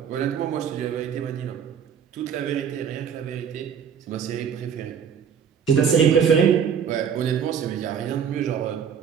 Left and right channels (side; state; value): left; quieter; 7.5 dB